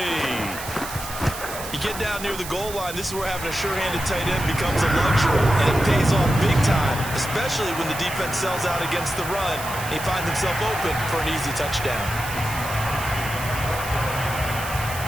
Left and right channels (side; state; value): right; noise; hiss, 10 dB below the sound